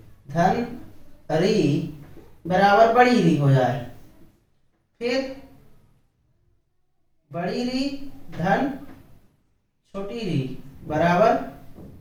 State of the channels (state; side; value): identical; both; correlation 1.00